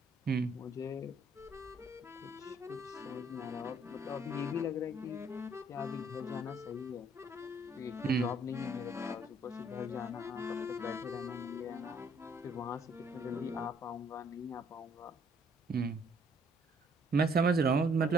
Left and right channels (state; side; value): normal; both; correlation 0.64